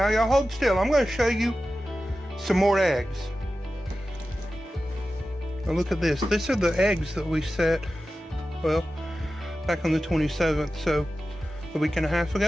y'all hold still. I'm going to show you some more eggs. Now look at this. These are the eggs that we set, well, back on the 27th, so a week and a half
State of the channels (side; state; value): both; normal; correlation 0.94